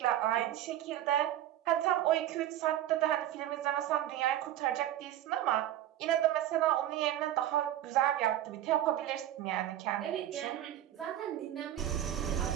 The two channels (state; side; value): quieter; left; 12.5 dB